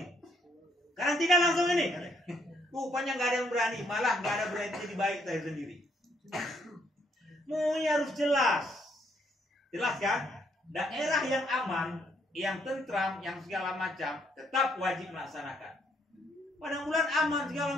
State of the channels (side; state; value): both; normal; correlation 0.70